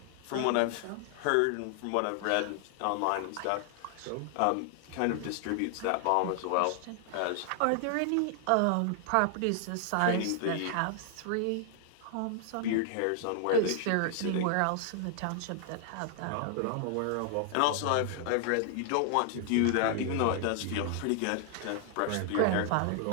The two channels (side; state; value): both; different; correlation 0.00